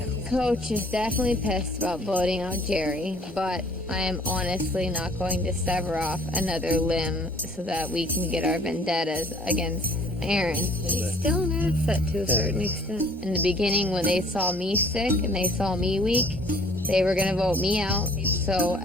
Coach is definitely pissed about voting out Jerry, but I am honestly not going to sever off another limb so that we can get our vendettas against Erin. She's still an asset to a certain extent. In the beginning, when they saw me sick and they saw me weak, they were going to vote me out. So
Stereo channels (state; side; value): normal; both; correlation 0.56